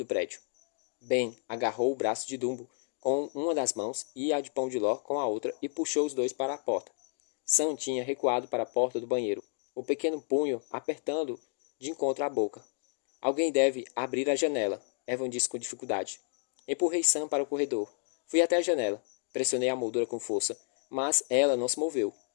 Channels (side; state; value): right; silent; 57 dB below the other